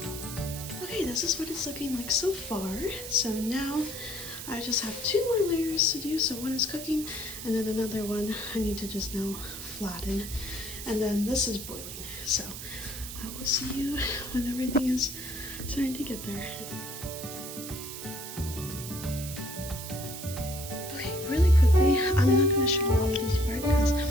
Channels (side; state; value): right; noise; hiss, 9 dB below the sound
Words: Okay, this is what it's looking like so far. So now I just have 2 more layers to do. So one is cooking, and then another one I need to just now flatten. And then this is boiling. So I will see you when everything is starting to get there. Okay, really quickly, I'm not going to show all of this part because